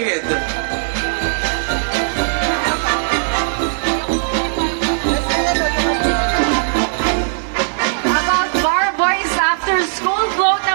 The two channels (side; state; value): left; silent; digital silence